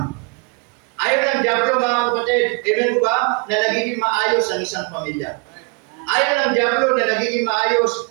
Ayaw ng dyablo, mga kapatid, amen po ba, na nagiging maayos ang isang pamilya. Ayaw ng dyablo na nagiging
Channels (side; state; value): left; quieter; 33.6 dB